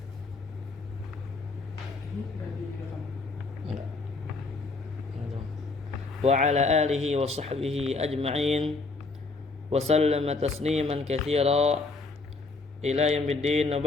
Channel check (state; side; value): quieter; right; 3.8 dB